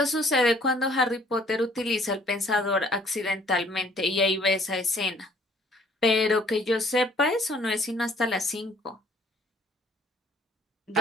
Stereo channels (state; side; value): normal; both; correlation 0.59